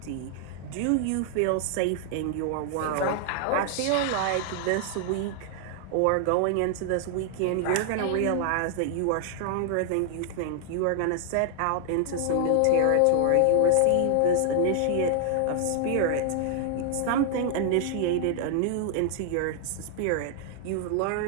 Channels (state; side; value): different; both; correlation 0.00